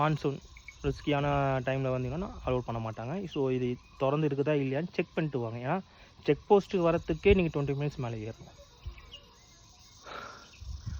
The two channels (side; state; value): both; identical; correlation 1.00